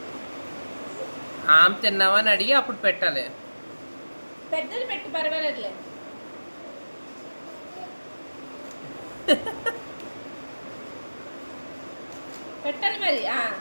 ఆమె తిన్నావా అని అడిగి అప్పుడు పెట్టాలి. పెద్దది పెట్టు, పర్వాలేదులే. పెట్టాలి మరి.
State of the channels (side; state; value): both; inverted; correlation -1.00